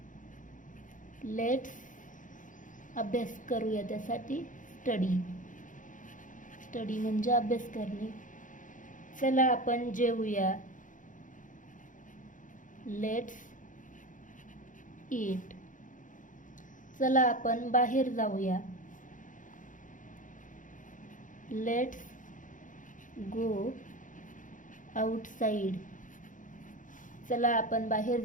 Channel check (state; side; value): late; right; 0.38 ms